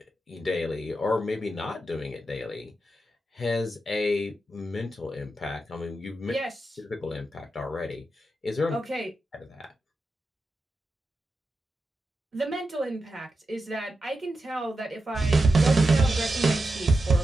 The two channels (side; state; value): both; normal; correlation 0.89